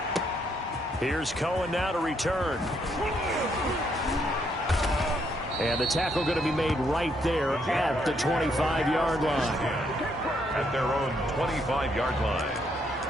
Here's Cohen now to return. And the tackle going to be made right there at the 25-yard line. At their own 25-yard line.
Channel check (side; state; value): both; normal; correlation 0.73